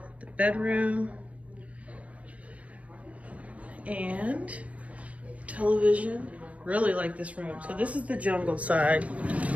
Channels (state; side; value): late; left; 0.065 ms